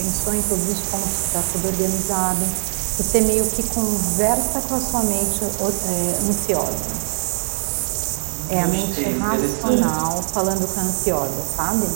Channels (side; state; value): left; silent; 63 dB below the other